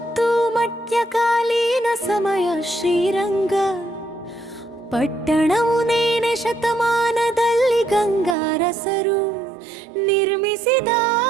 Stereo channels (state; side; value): drops out; left; at 8.3 s